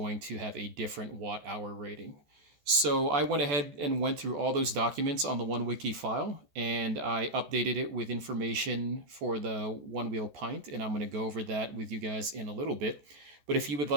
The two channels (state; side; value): late; left; 14 ms